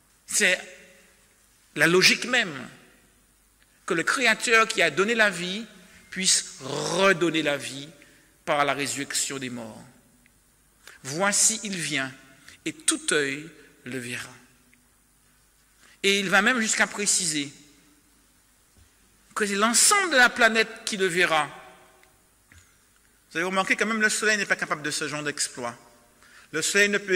C'est la logique même que le Créateur qui a donné la vie puisse redonner la vie par la résurrection des morts. Voici, il vient, et tout œil le verra. Et il va même jusqu'à préciser que c'est l'ensemble de la planète qui le verra. Vous avez remarqué que même le soleil n'est pas capable de ce genre d'exploit. Le soleil ne peut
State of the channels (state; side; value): identical; both; correlation 1.00